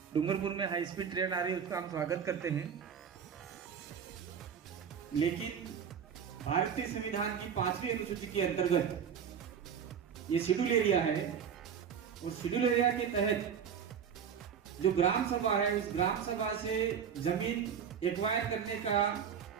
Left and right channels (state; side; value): quieter; left; 7.6 dB